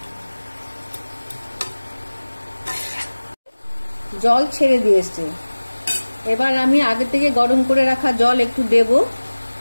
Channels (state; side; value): inverted; both; correlation -1.00